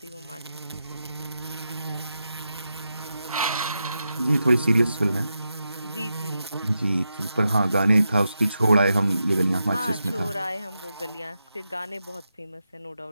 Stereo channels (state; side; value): inverted; both; correlation -0.87